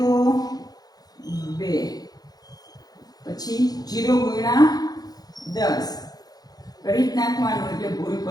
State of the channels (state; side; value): late; right; 0.19 ms